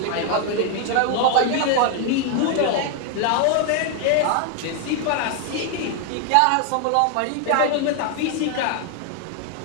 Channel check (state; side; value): different; both; correlation 0.00